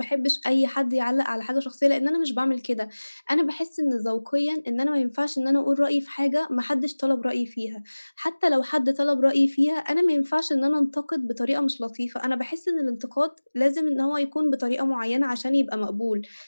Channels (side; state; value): both; inverted; correlation -1.00